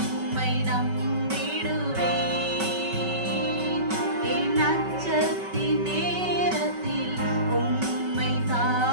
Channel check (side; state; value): left; late; 5.3 ms